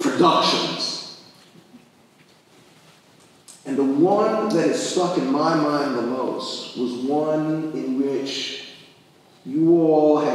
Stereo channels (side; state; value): both; identical; correlation 1.00